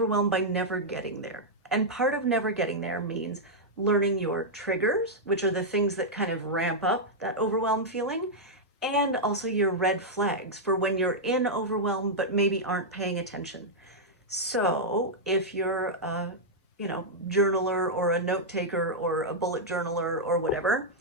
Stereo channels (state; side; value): normal; both; correlation -0.06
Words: by never getting there. And part of never getting there means learning your triggers, which are the things that kind of ramp up that overwhelm feeling, and also your red flags for when you're in overwhelm but maybe aren't paying attention. So if you're a, journaler or a note taker or a bullet journaler or whatever,